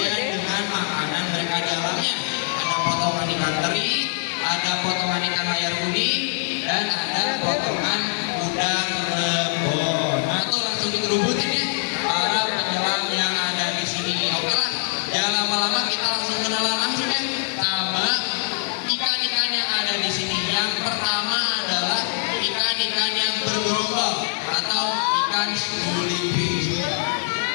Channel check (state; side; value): silent; right; 61 dB below the other